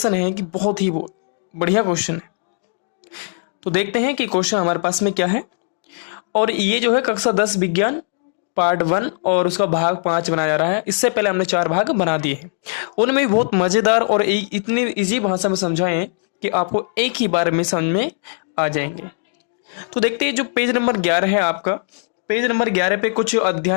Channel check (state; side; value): silent; right; digital silence